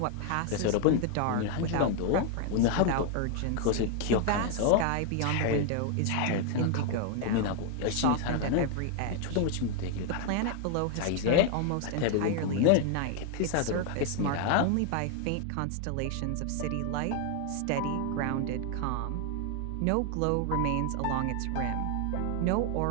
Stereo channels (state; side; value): different; both; correlation 0.00